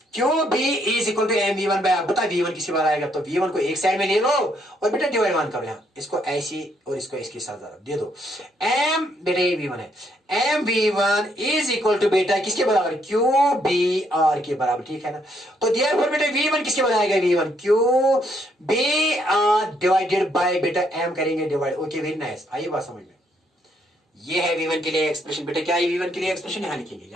QB is equal to mv1 by r. बता v1 किसके बार आएगा? तो v1 को एक साइड में ले लो और बेटा डिवाइड 1 करो. यहाँ इसको ऐसी और इसको इसके साथ दे दो. m बेटा ये v1 है. mv1 इज इक्वल टू बेटा किसके बराबर? QBr के बराबर. ठीक है ना. तो देयरफॉर बेटा v1 किसके बराबर आएगा? v1 QBr डिवाइडेड बाय बेटा m करेंगे डिवाइड. Okay, very nice. आइए बात समझ में. ये है v1 के लिए एक्सप्रेशन. बेटा क्या है v1 के लिए एक्सप्रेशन? यहां लिखेंगे,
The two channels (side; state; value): both; normal; correlation 0.72